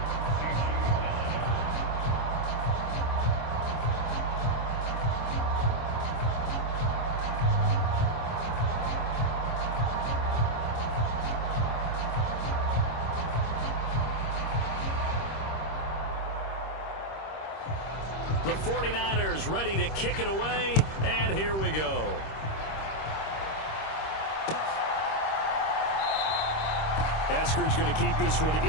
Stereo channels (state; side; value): late; right; 26 ms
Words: The 49ers ready to kick it away, and here we go. Eskridge going to keep this one